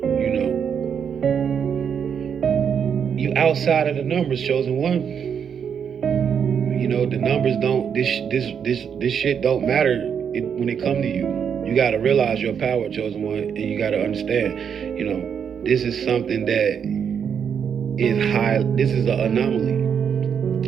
you outside of the numbers, Chosen One. The numbers don't. This shit don't matter when it come to you. You gotta realize your power, Chosen One, and you gotta understand. This is something that is high. This is an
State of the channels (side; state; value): left; quieter; 7.5 dB